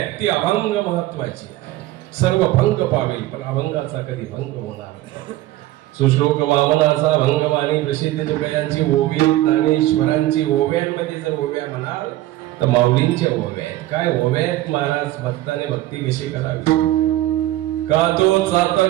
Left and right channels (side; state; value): left; quieter; 16.0 dB